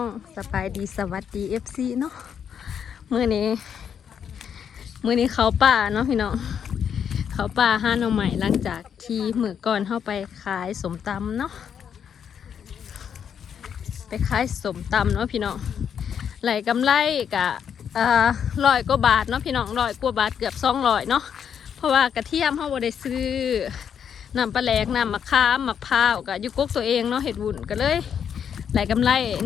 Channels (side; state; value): right; quieter; 8.0 dB